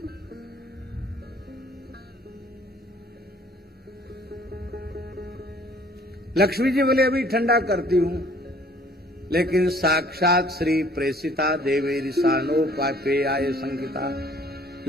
लक्ष्मी जी बोले अभी ठंडा करती हूं, लेकिन साक्षात श्री प्रेषिता देवेरी सानो पापे आये संकिता।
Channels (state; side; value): normal; both; correlation 0.57